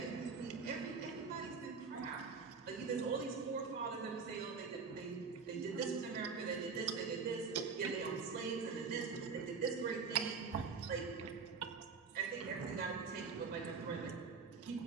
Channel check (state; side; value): quieter; left; 5.2 dB